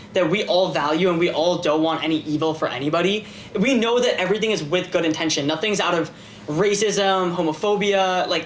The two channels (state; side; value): identical; both; correlation 1.00